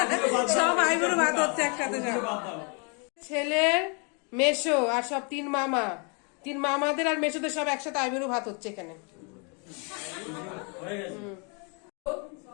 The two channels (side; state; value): right; quieter; 35.9 dB